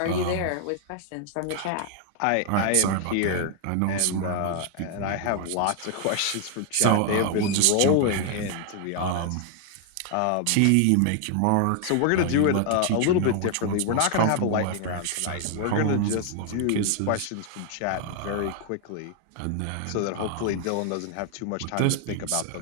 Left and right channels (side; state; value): both; different; correlation 0.00